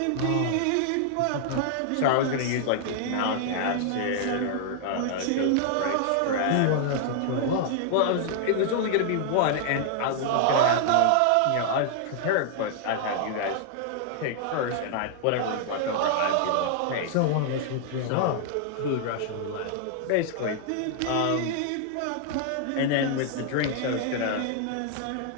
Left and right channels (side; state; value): both; different; correlation 0.00